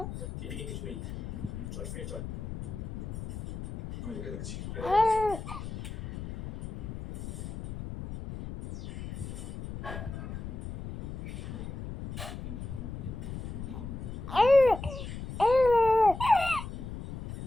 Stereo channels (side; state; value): left; noise; rumble, 8 dB below the sound